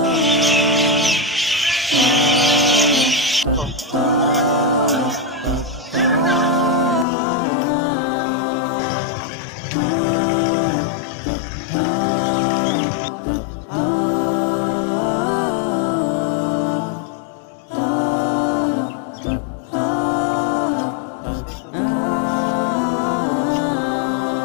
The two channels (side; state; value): right; drops out; at 7.1 s